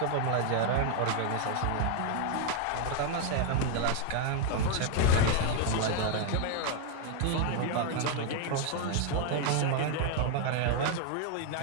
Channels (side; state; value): both; different; correlation 0.00